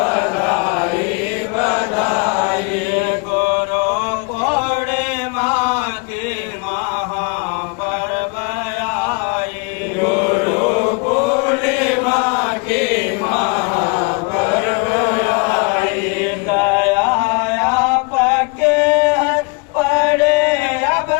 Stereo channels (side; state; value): right; quieter; 31.8 dB